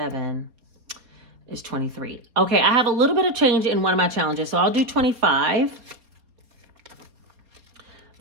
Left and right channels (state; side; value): late; left; 4.2 ms